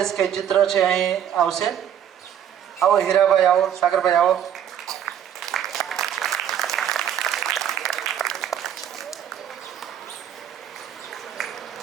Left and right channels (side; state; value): left; quieter; 9.8 dB